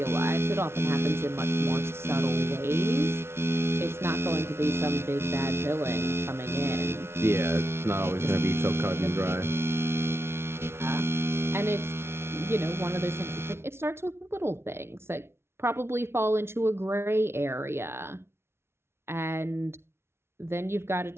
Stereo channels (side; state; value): left; late; 0.12 ms